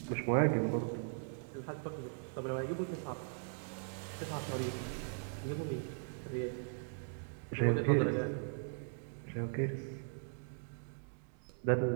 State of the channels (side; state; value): left; silent; digital silence